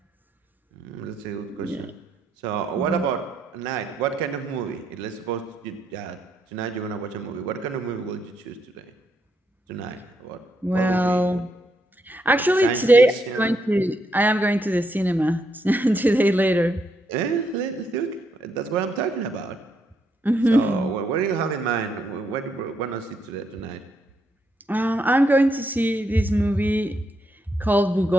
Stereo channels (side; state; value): both; normal; correlation 0.77